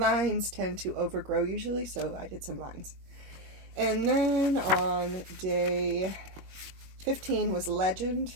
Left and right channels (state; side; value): late; left; 21 ms